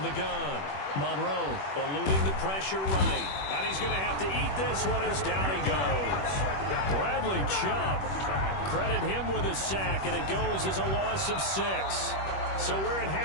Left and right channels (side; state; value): right; late; 21 ms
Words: the gun, Monroe eluding the pressure right. And he's going to have to eat this one as down he goes. Bradley Chubb, credit him with a sack, and it goes as a loss of 6. So we're at